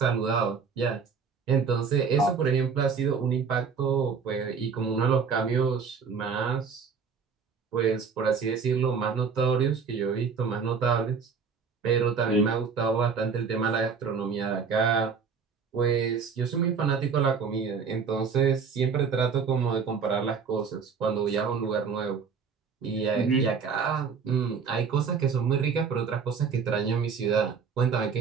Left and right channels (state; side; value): quieter; left; 5.8 dB